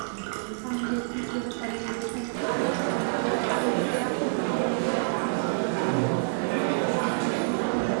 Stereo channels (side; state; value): left; silent; digital silence